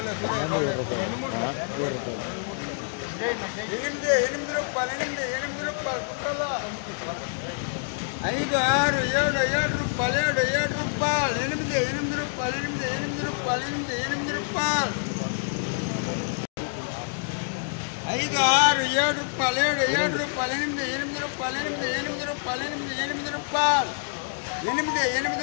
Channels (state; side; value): silent; right; digital silence